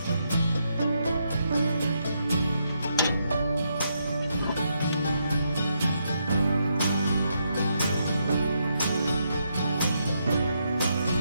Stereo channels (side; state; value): both; inverted; correlation -0.79